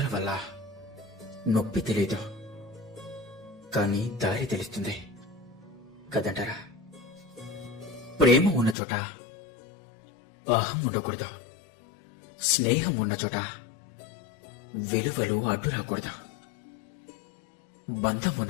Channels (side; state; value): right; drops out; at 8.8 s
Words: వల్ల నొప్పి తెలియదు, కానీ దారి తెలుస్తుంది కదంటారా. ప్రేమ ఉన్న చోట అహం ఉండకూడదు, స్నేహం ఉన్న చోట విలువలు అడ్డు రాకూడదు. బంధం